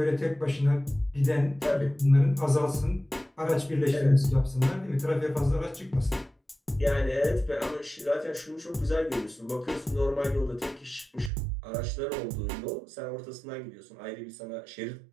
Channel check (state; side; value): drops out; left; at 11.3 s